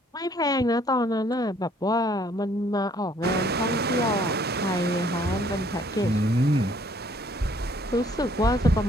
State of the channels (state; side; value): normal; both; correlation 0.61